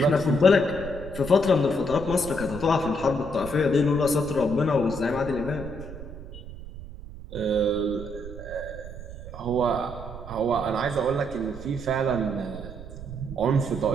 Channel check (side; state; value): right; noise; rumble, 12 dB below the sound